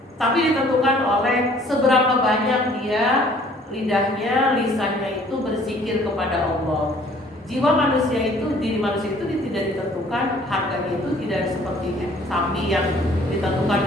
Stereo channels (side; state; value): both; normal; correlation 0.56